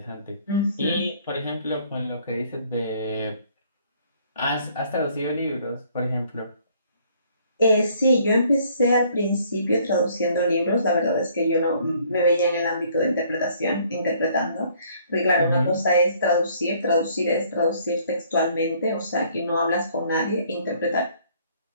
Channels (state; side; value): inverted; both; correlation -0.61